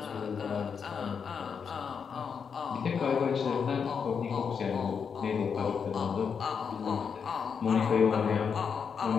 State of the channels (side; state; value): right; quieter; 6.4 dB